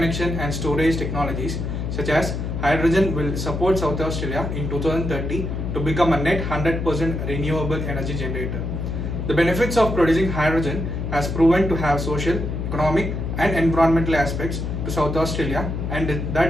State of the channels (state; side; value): noise; left; hum, 3 dB below the sound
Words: and storage technologies such as hydrogen will support South Australia in 2030 to become a net 100% renewable energy generator. The benefits of producing hydrogen has proven to have social, economic and environmental aspects to South Australia, and